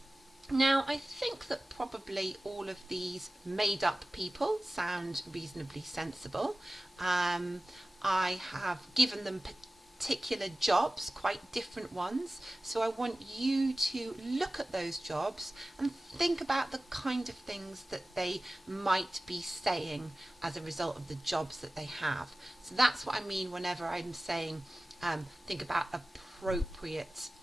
Now, I think that probably all of these made up people sound reasonably sensible. I have given them particular jobs, quite different ones, so I want you to look at those jobs and think about the kind of things that they might be saying as a result of the jobs that they have. So that's what I mean whenever I'm saying think about appropriate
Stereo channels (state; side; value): normal; both; correlation 0.96